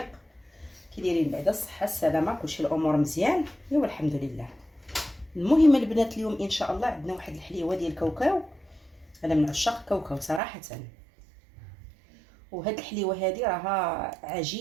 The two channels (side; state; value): left; drops out; at 10.4 s